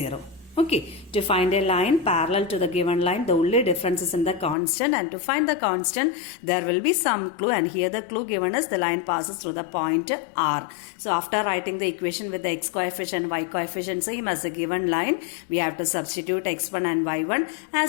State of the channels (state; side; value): drops out; right; at 4.5 s